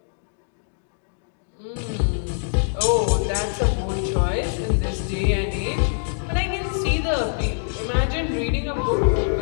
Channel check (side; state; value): right; silent; digital silence